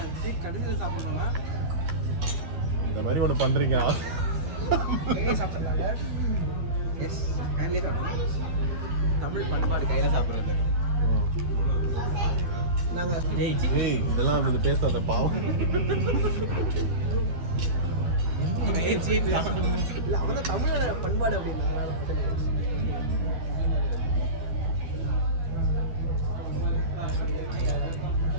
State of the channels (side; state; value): left; late; 12 ms